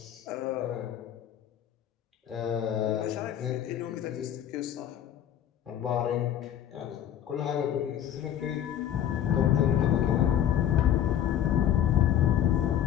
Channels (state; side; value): quieter; right; 10.4 dB